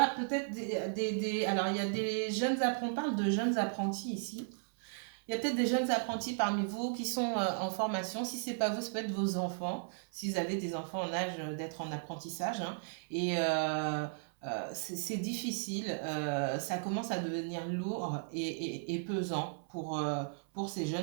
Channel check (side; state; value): left; silent; 54 dB below the other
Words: peut-être alors, il y a des jeunes apprentis, on parle de jeunes apprentis ici. Il y a peut-être des jeunes apprentis parmi vous qui sont en formation. Si ce n'est pas vous, ça peut être vos enfants, si vous avez des enfants en âge d'être en apprentissage, hein. Et c'est difficile, ça commence à devenir lourd et pesant pour ces